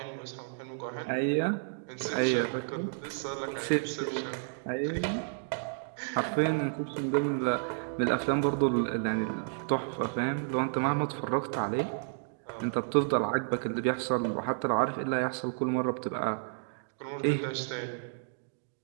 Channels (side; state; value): left; silent; digital silence